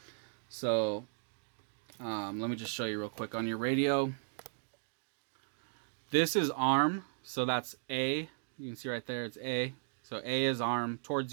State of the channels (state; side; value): silent; left; digital silence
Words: So let me just show you real quick. On your radio, this is arm, so that's A. You can see right there, it's A. So A is arm